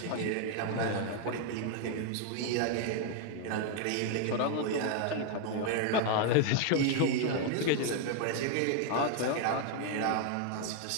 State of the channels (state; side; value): different; both; correlation 0.00